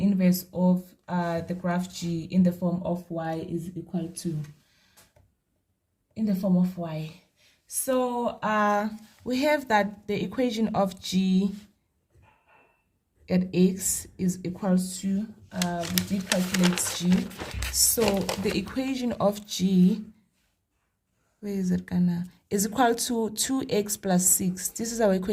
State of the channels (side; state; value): both; identical; correlation 1.00